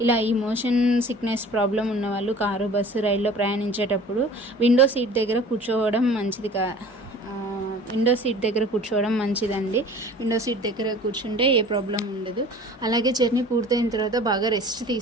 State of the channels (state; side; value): normal; both; correlation 0.44